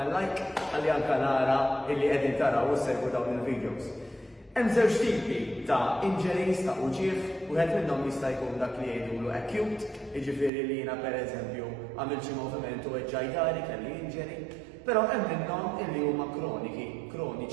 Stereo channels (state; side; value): drops out; left; at 10.5 s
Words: like ħalli anke nara illi qegħdin taraw u segwu dawn il-videos. Hemm żewġ tipi ta' injuries ta' uġieħ, wieħed minnhom jista' jkun dak li jgħidulu acute, jiġifieri li jiena pereżempju għamil xi moviment u eġġajdari kelli injury, però hemm minnhom illi huma